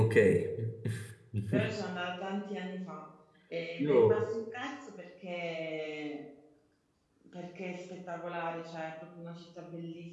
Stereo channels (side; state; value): both; identical; correlation 1.00